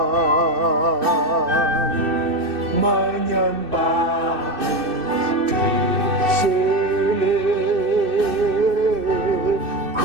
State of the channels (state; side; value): late; left; 2.6 ms